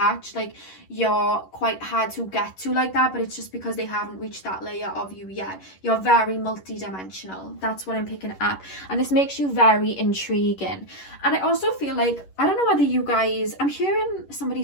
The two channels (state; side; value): late; right; 11 ms